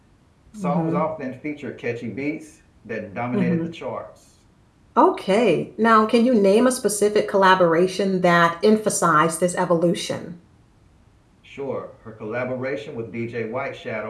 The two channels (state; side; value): identical; both; correlation 1.00